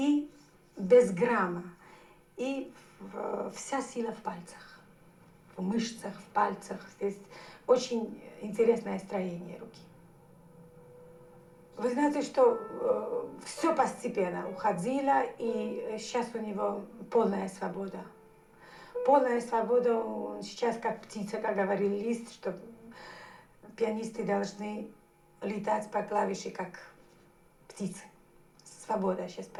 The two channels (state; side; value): identical; both; correlation 1.00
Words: без грамма. И вся сила в пальцах, в мышцах, в пальцах. Здесь очень интересное строение руки. Вы знаете, что все постепенно уходило, и сейчас у него полная свобода. Полная свобода, он сейчас как птица, как говорил Лист, что пианисты должны летать по клавише, как птицы. Свобода сейчас